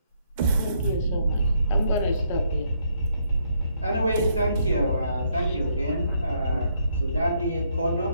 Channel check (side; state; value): both; inverted; correlation -0.72